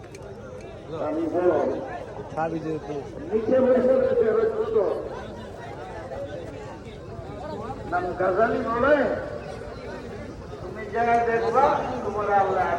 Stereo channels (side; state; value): both; identical; correlation 1.00